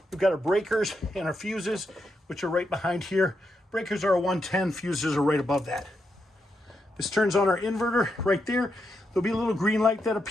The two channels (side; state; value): both; normal; correlation 0.83